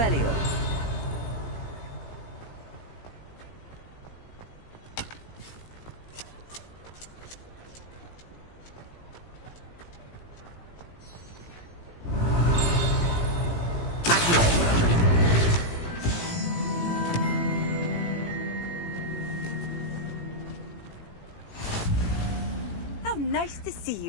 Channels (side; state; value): right; late; 18 ms